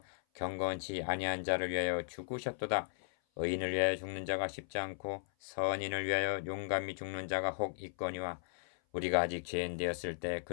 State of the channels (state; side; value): silent; right; 54 dB below the other